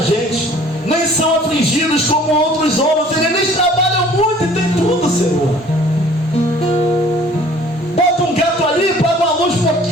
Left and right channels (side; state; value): both; normal; correlation 0.52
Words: gente, nem são afligidos como outros homens. Eles trabalham muito e tem tudo, Senhor. Bota um gato ali, paga uma luz